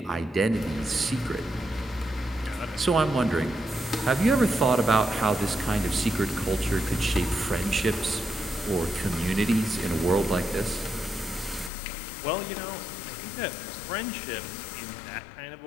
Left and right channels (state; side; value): drops out; right; at 11.7 s